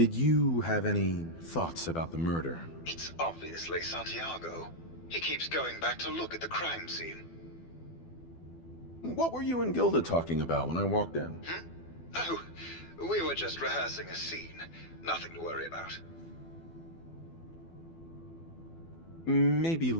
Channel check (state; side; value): late; right; 12 ms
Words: you have any thoughts about the murder? It's obviously Santiago. He keeps going back to look at the crime scene. What were you and Gilda talking about when I walked in? Oh, we were just rehearsing a scene. Nothing to worry about. Maybe